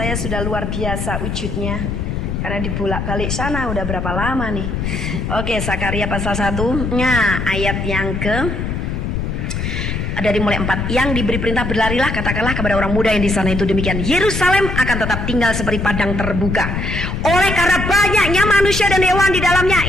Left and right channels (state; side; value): noise; left; rumble, 3 dB below the sound